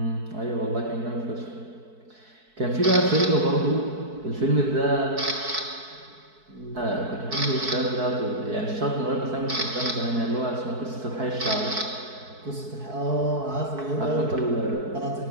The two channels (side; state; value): left; late; 4.6 ms